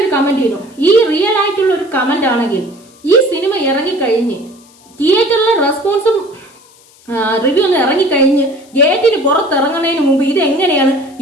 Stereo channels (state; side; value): noise; left; hiss, 28 dB below the sound